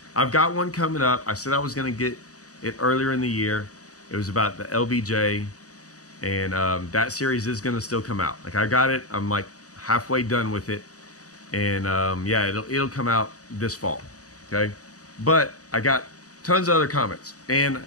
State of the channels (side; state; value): right; late; 0.66 ms